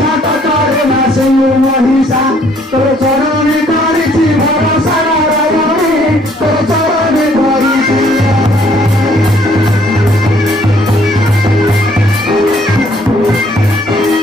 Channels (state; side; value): normal; both; correlation 0.63